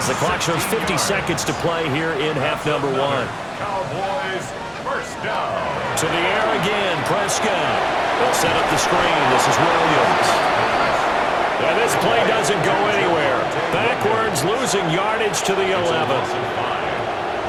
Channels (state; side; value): identical; both; correlation 1.00